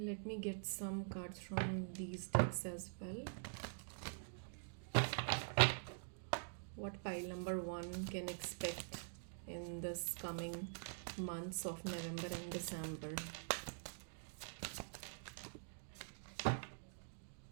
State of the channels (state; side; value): silent; left; digital silence